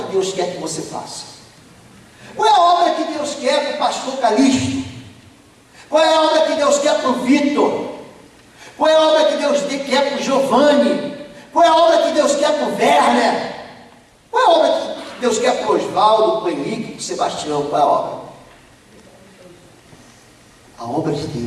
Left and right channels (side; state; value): both; identical; correlation 1.00